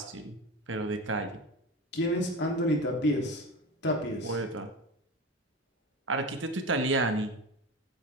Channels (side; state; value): both; normal; correlation 0.27